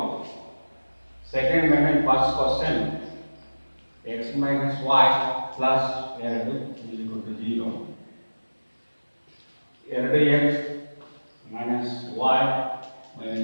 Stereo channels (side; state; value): both; inverted; correlation -1.00